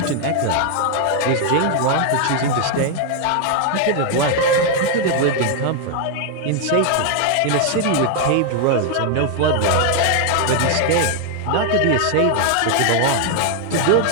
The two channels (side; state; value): both; different; correlation 0.00